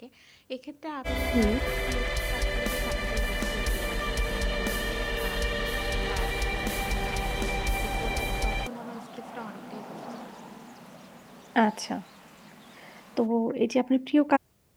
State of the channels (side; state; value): both; identical; correlation 1.00